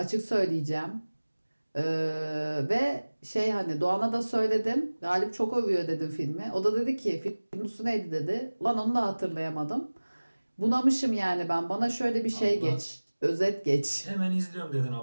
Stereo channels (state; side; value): inverted; both; correlation -1.00